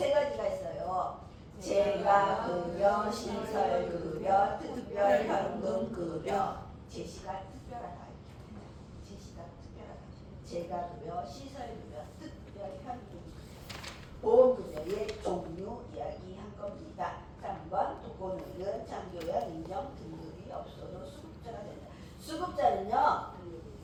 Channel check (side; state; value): both; identical; correlation 1.00